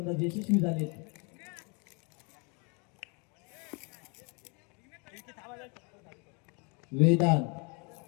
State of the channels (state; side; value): quieter; right; 33.2 dB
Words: यशस्वी झालेत वेदांत